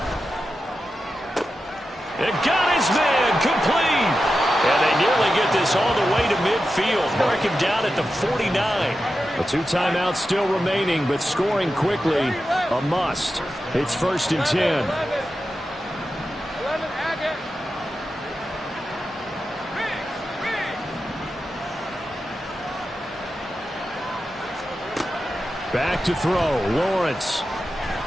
It got his man complete. And they nearly get this all the way to midfield. Mark him down at the 49. The 2 timeouts still remaining, but scoring quickly, a must. It's 1st and 10. 11, Back to throw, Lawrence.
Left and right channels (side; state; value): both; normal; correlation 0.91